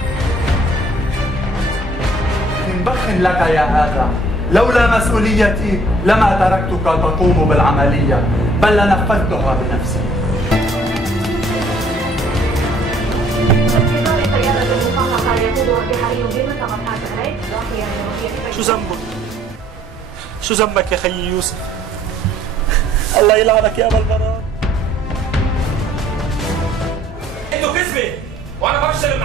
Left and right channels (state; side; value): normal; both; correlation 0.60